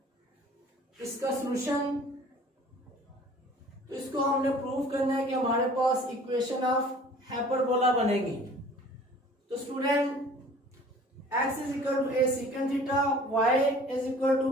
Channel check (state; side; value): normal; both; correlation 0.49